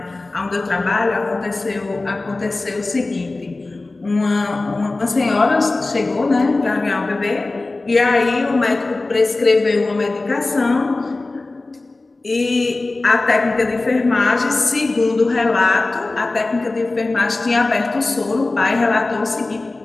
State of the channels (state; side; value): quieter; right; 3.2 dB